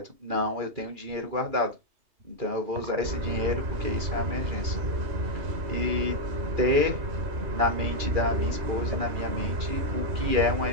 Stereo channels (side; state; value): left; late; 2.4 ms